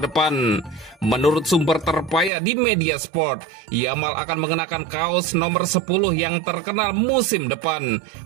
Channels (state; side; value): drops out; left; at 2.3 s